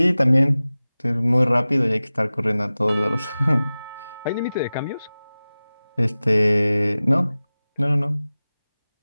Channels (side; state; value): both; inverted; correlation -0.97